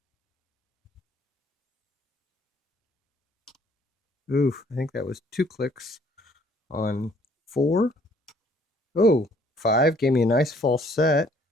Oof, I think that was 2 clicks on 4. Oh, 5 gave me a nice false set.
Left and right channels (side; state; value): both; normal; correlation 0.61